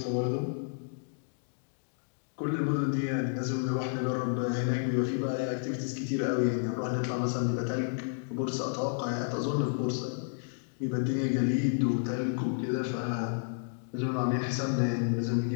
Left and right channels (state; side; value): silent; right; digital silence